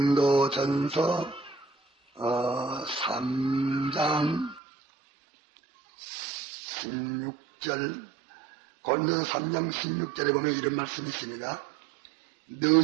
3장 16절, 고린도전서 3장 16절에 보면 이런 말씀이 있습니다.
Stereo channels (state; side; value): drops out; left; at 4.6 s